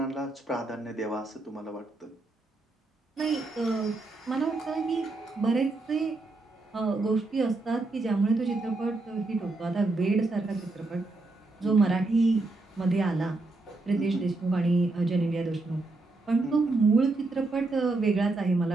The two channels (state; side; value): quieter; left; 3.2 dB